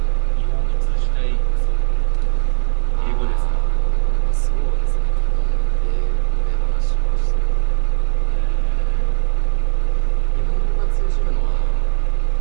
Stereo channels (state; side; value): silent; left; 67 dB below the other